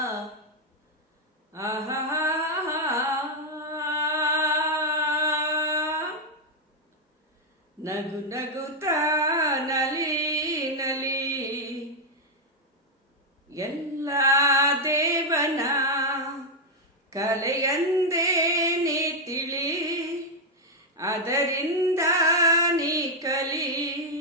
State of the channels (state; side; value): normal; both; correlation 0.01